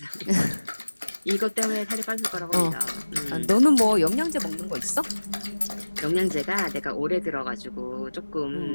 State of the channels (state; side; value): inverted; both; correlation -1.00